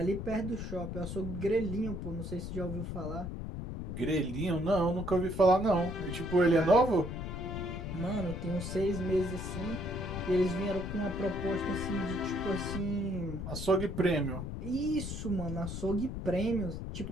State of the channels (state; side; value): noise; left; rumble, 6 dB below the sound